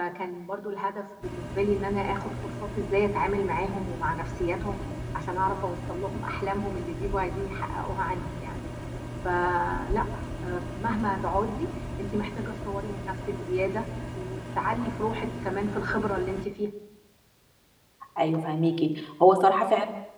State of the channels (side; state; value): both; identical; correlation 1.00